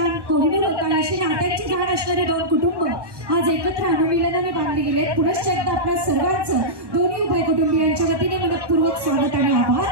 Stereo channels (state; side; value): late; left; 1.1 ms